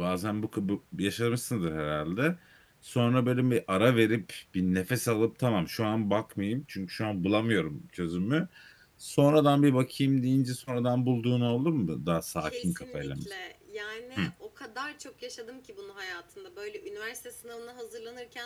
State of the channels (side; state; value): both; identical; correlation 1.00